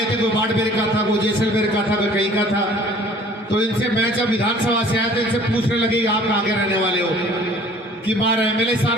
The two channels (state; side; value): normal; both; correlation 0.51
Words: थे। कोई बाड़मेर का था, कोई जैसलमेर का था, कोई कहीं का था। तो इनसे मैं जब विधानसभा से आया तो इनसे पूछने लगे आप कहाँ के रहने वाले हो, कि मार MLA